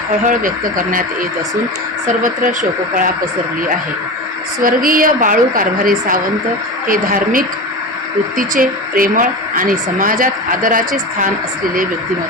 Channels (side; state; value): both; normal; correlation 0.26